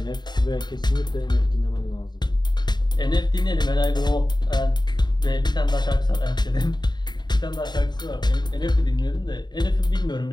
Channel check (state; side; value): late; right; 0.21 ms